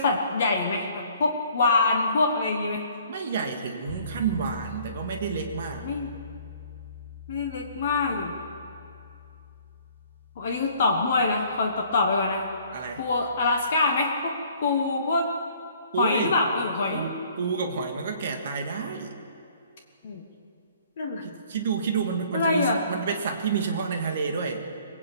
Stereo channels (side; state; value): both; inverted; correlation -0.57